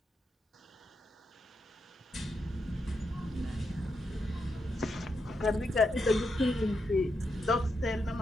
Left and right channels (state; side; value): normal; both; correlation 0.83